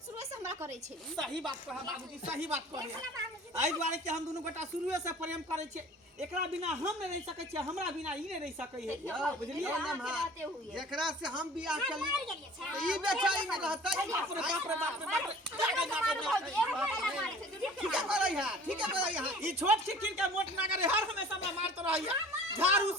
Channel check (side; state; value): both; normal; correlation 0.46